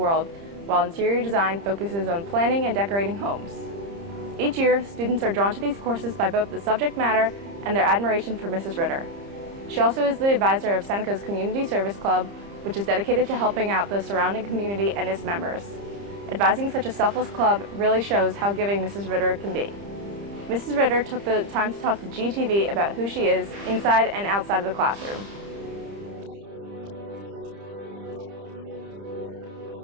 while interior design focuses on planning and decorating homes. Each year, students are drawn to these courses by both the subject matter and their admiration for Mrs. Ritter. She also is the advisor of Seneca's Community Service Club, which is dedicated to helping out the surrounding community and its members. Advising such a selfless club really shows how giving Mrs. Ritter can be. Mrs. Ritter took the time to talk to GTV about who she is inside and outside of the classroom. I think the thing about my childhood that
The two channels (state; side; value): late; left; 30 ms